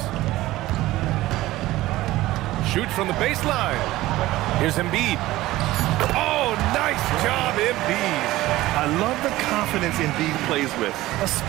Shoot from the baseline. Here's Embiid. Oh, nice job, Embiid. I love the confidence Embiid plays with,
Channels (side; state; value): left; quieter; 17.0 dB